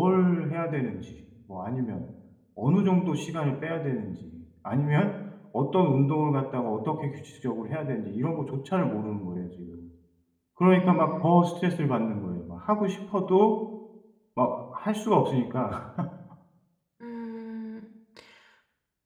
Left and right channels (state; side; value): identical; both; correlation 1.00